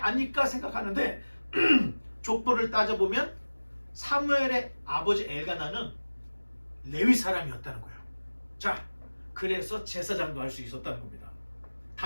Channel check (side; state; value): both; inverted; correlation -1.00